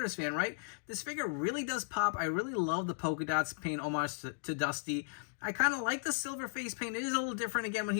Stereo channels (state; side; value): silent; right; digital silence